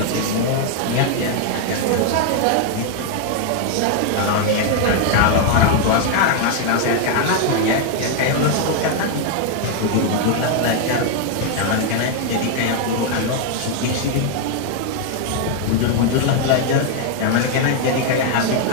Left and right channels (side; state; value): both; different; correlation 0.00